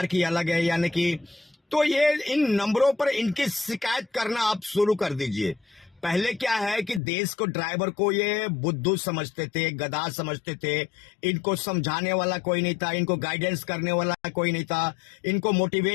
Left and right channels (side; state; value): right; drops out; at 7.0 s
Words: की अलग है, यानी कि तो ये इन नंबरों पर इनकी शिकायत करना आप शुरू कर दीजिए। पहले क्या है कि देश को, ड्राइवर को ये बुद्धू समझते थे, गधा समझते थे, इनको समझाने वाला कोई नहीं था, इनको गाइडेंस करने वाला कोई नहीं था, इनको